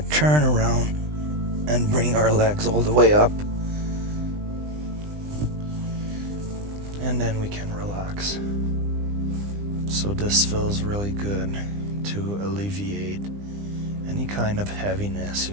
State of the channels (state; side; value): late; left; 20 ms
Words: turn around and bring our legs all the way up, and then we can relax. So this feels really good to alleviate any kind of heaviness you